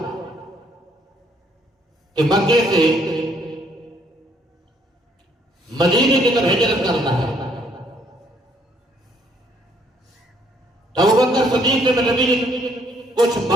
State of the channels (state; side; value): normal; both; correlation 0.66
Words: کہ مکے سے مدینے کی طرف ہجرت کرنا ہے، تو ابوبکر صدیق نے نبی نے کچھ